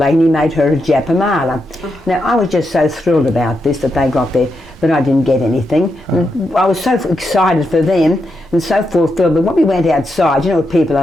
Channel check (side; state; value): both; normal; correlation 0.84